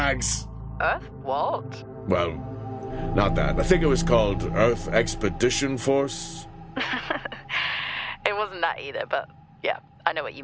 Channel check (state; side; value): identical; both; correlation 1.00